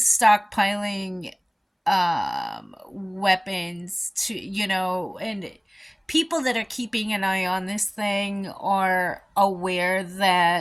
weapons to, and people that are keeping an eye on this thing are aware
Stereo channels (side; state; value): both; identical; correlation 1.00